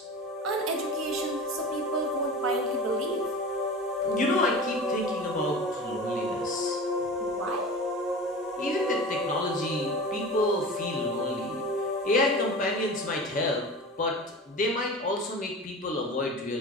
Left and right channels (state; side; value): normal; both; correlation 0.33